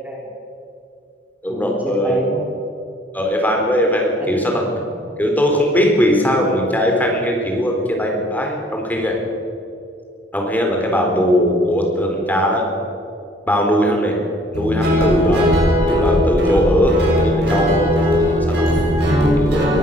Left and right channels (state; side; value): normal; both; correlation 0.58